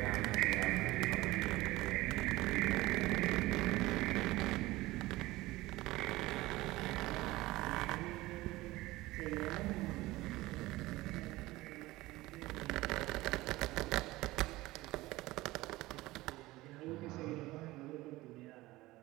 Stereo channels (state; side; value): quieter; left; 18.8 dB